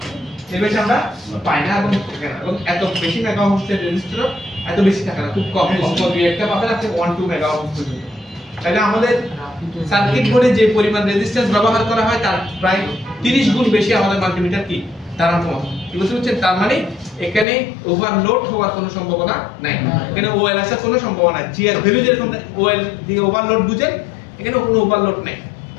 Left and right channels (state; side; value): drops out; right; at 17.4 s